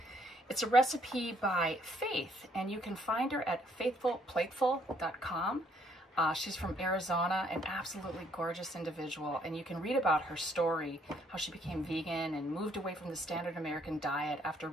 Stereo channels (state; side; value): normal; both; correlation 0.67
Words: It's a recipe by Faith, and you can find her at faithfulplateful.com. She's from Arizona, an absolutely gorgeous individual, and you can read about her story, how she became vegan and moved away from the standard American diet after